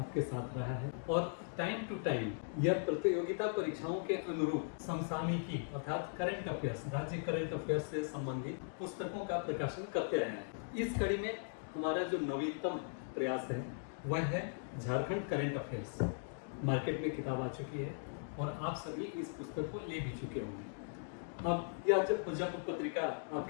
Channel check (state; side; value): silent; right; digital silence